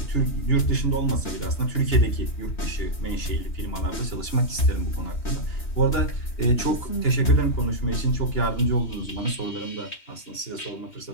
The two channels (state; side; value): late; right; 3.2 ms